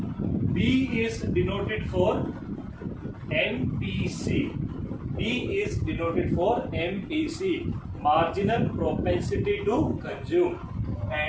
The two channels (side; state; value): both; identical; correlation 1.00